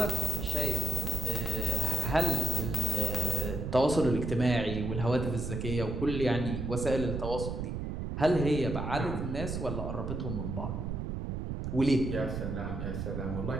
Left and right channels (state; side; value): noise; right; rumble, 3 dB below the sound